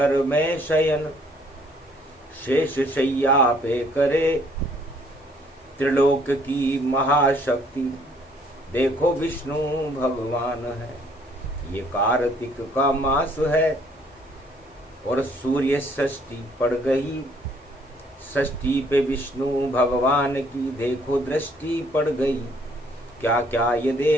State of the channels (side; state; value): both; normal; correlation 0.63